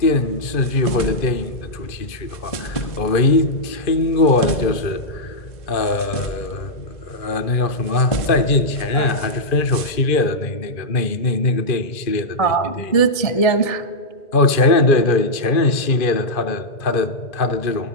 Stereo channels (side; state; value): right; late; 2.4 ms